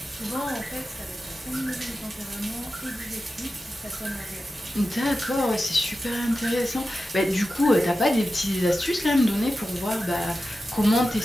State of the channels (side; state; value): both; normal; correlation 0.92